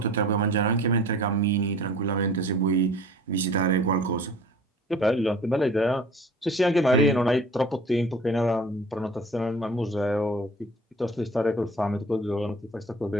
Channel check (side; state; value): both; normal; correlation 0.46